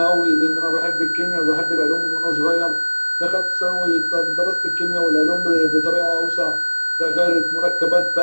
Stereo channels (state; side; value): inverted; both; correlation -1.00